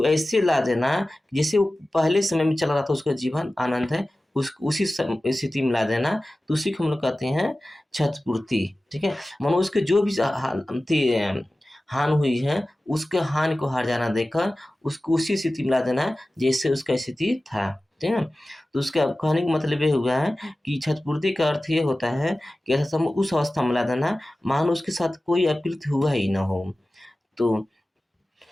ऐसे ला देना जैसे वो पहले समय में चल रहा था, उसका जीवन आनंद है, उसी स्थिति में ला देना, तो उसी को हम लोग कहते हैं क्षतिपूर्ति, ठीक है। मानो उसके जो भी हानि हुई है उसके हानि को हर्जाना देकर उसको उसी स्थिति में ला देना जैसे उसका स्थिति था, ठीक है। तो उसका कहने का मतलब ये हुआ है कि क्षतिपूर्ति का अर्थ ये होता है कि ऐसा उस अवस्था में ला देना मानो उसके साथ कोई अपकृत्य हुआ ही ना हो। तो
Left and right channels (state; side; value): normal; both; correlation 0.96